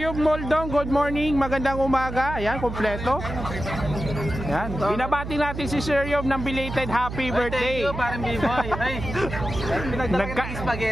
Moldong, good morning. Magandang umaga. Ayan, kompleto. Ayan. Binabati natin si Sir Yub ng belated happy birthday. Thank you, parang B-boy. Ay, pinagdala kita ng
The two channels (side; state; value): right; noise; hum, 7 dB below the sound